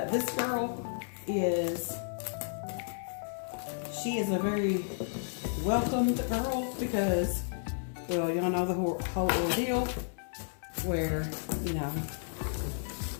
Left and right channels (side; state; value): right; silent; digital silence